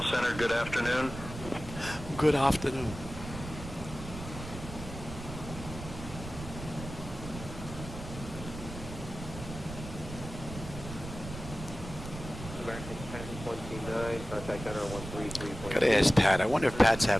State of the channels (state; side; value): noise; right; rumble, 10 dB below the sound